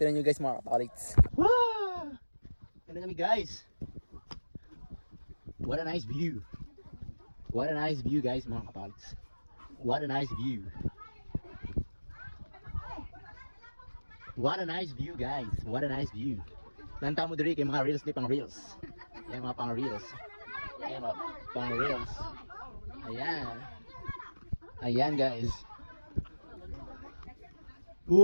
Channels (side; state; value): both; inverted; correlation -1.00